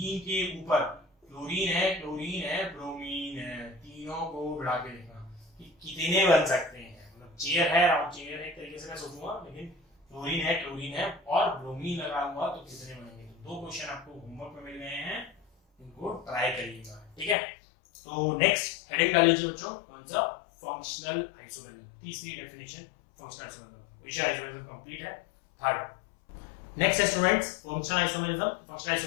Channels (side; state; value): right; drops out; at 17.4 s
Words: के ऊपर क्लोरीन है, ब्रोमीन है, तीनों को बढ़ा के देखना कि कितने बन सकते हैं, मतलब चेयर है, राउंड चेयर है, एक तरीके से मैं सोचूंगा, लेकिन क्लोरीन है और ब्रोमीन लगाऊंगा तो कितने बनेंगे। तो दो क्वेश्चन आपको होमवर्क में मिल गए हैं, इनको ट्राई करिएगा, ठीक है। तो नेक्स्ट हेडिंग डाल लीजिए बच्चों, कौन सा, फंक्शनल आइसोमेरिज्म, तीसरी डेफिनेशन फंक्शनल आइसोमेरिज्म, विषय आइसोमेरिज्म कंप्लीट है। थर्ड नेक्स्ट है students functional isomerism. Functional